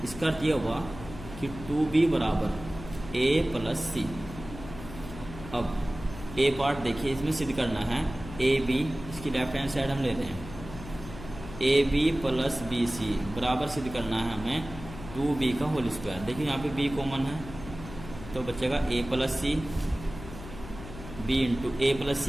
इसका अर्थ यह हुआ कि 2b बराबर ए प्लस सी। अब ए पार्ट देखिए, इसमें सिद्ध करना है ए बी, इसकी लेफ्ट हैंड साइड हम ले रहे हैं A B plus B C बराबर सिद्ध करना है हमें 2b का होल स्क्वायर। देखिए यहाँ पे b कॉमन है तो बचेगा a plus C, b into a plus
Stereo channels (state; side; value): noise; left; hum, 13 dB below the sound